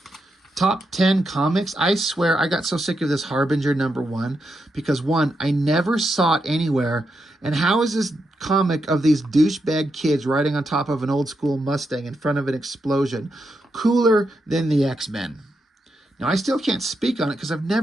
Top 10 comics. I swear I got so sick of this Harbinger #1 because, one, I never saw it anywhere. And how is this comic of these douchebag kids riding on top of an old school Mustang in front of an explosion cooler than the X-Men? Now, I still can't speak on it because I've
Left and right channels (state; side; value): normal; both; correlation 0.84